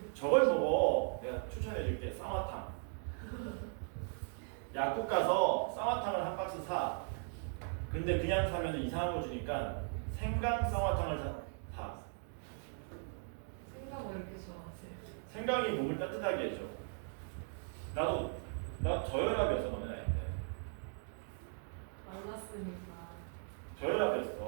저걸 보고 내가 추천해줄게. 쌍화탕. 약국 가서 쌍화탕을 한 박스 사. 근데 그냥 사면 이상한 거 주니까 생강 쌍화탕을 사. 생각 왜 이렇게 좋아하세요? 생강이 몸을 따뜻하게 해줘. 나 저혈압이었어. 너네 나이 때. 만났으니까.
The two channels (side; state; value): left; silent; 52 dB below the other